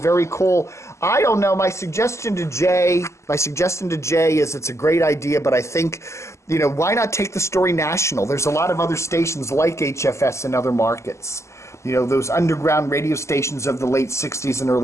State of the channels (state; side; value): late; right; 0.14 ms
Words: cool. I don't know. My suggestion to Jay is it's a great idea, but I think, you know, why not take the story national? There's a lot of other stations like HFS in other markets. those underground radio stations of the late 60s and